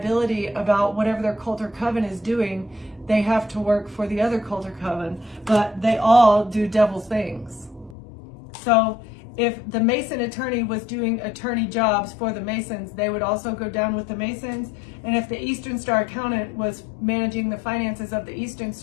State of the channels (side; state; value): right; drops out; at 8.0 s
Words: about whatever their cult or coven is doing, they have to work for the other cult or coven. But they all do devil things. So if the Mason attorney was doing attorney jobs for the Masons, they would also go down with the Masons. And if the Eastern Star accountant was managing the finances of the Eastern